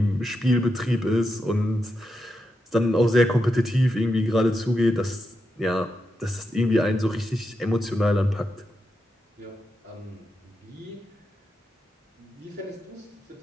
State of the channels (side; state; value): both; normal; correlation 0.86